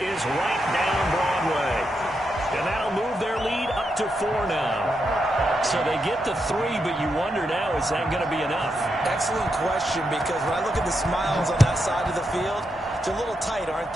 right down Broadway. And that'll move their lead up to 4 now. So they get to 3, but you wonder now, is that going to be enough? Excellent question, because when I look at the smiles on that side of the field, they're a little tight, aren't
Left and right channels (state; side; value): normal; both; correlation 0.84